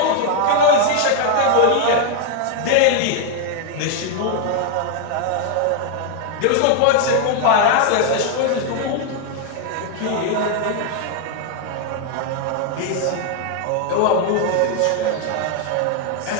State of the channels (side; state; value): both; different; correlation 0.00